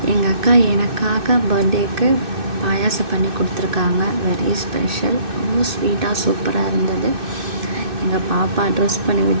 எங்கள் அக்கா எனக்காக பர்த்டேக்கு பாயாசம் பண்ணி கொடுத்துருக்காங்க. Very special. ரொம்ப ஸ்வீட்டாக சூப்பராக இருந்தது. எங்கள் பாப்பா ட்ரெஸ் பண்ணி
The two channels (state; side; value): late; left; 2.6 ms